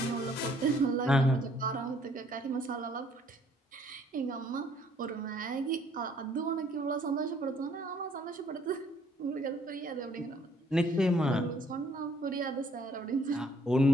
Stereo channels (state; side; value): normal; both; correlation 0.63